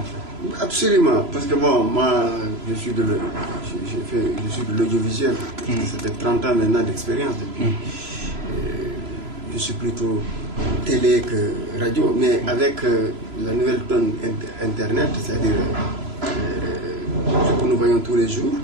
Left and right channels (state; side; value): late; left; 3.0 ms